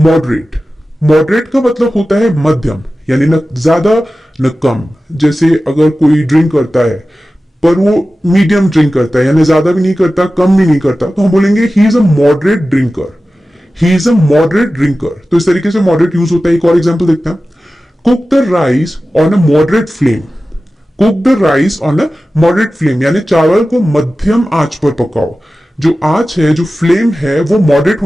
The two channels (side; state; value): both; normal; correlation 0.95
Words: Moderate का मतलब होता है मध्यम, यानी न ज्यादा न कम। जैसे अगर कोई ड्रिंक करता है पर वो मीडियम ड्रिंक करता है, यानी ज्यादा भी नहीं करता कम भी नहीं करता, तो हम बोलेंगे he is a moderate drinker. He is a moderate drinker. तो इस तरीके से मॉडरेट यूज होता है। एक और एग्जांपल देखते हैं। Cook the rice on a moderate flame. Cook the rice on a moderate flame, यानी चावल को मध्यम आंच पर पकाओ। जो आंच है, जो फ्लेम है, वो मॉडरेट